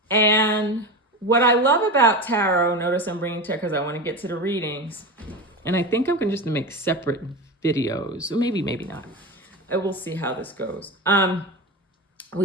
And what I love about tarot, notice I'm bringing tarot because I want to get to the readings. And I think I'm going to just make separate videos, or maybe not. We'll see how this goes.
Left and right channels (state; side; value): normal; both; correlation 0.24